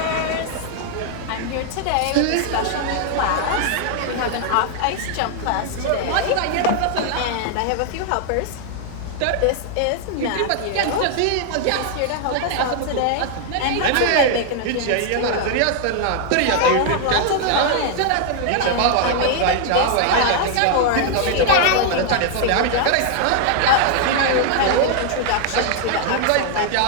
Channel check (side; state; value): both; different; correlation 0.00